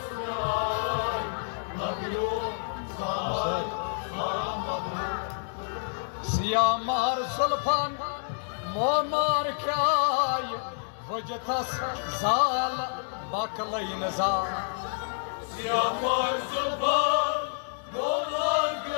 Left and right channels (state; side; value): silent; right; digital silence